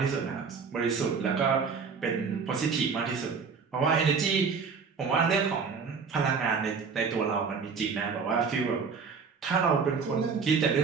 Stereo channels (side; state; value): left; quieter; 5.5 dB